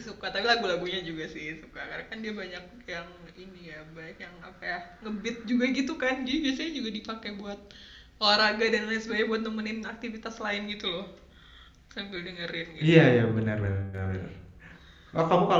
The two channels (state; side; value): identical; both; correlation 1.00